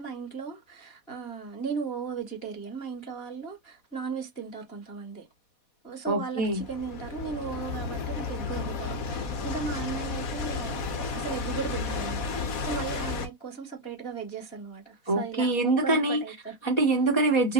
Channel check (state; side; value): late; right; 4.1 ms